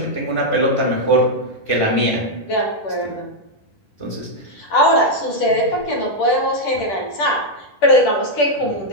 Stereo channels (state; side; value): late; right; 10 ms